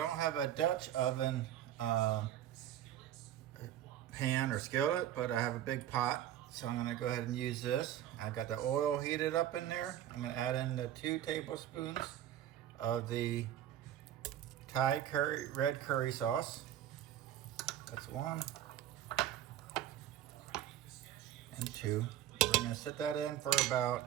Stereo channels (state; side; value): quieter; left; 11.6 dB